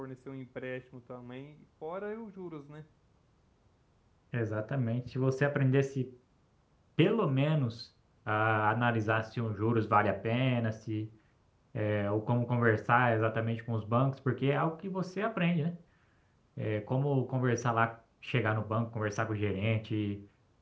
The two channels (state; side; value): identical; both; correlation 1.00